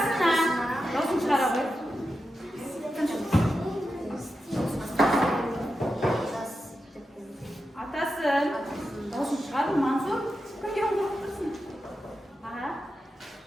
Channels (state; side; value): normal; both; correlation 0.90